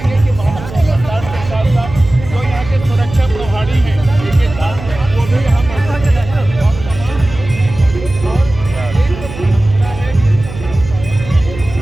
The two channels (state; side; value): noise; right; hum, 12 dB below the sound